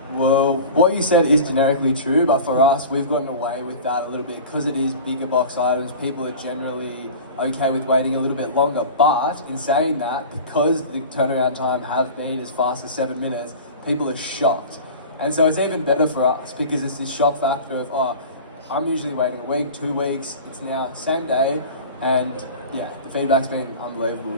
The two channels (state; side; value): inverted; both; correlation -0.36